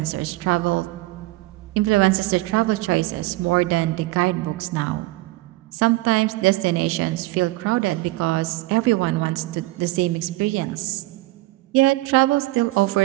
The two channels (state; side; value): quieter; left; 19.2 dB